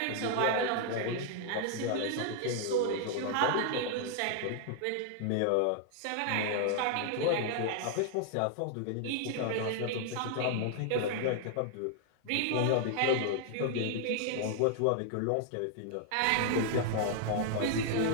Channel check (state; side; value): different; both; correlation 0.00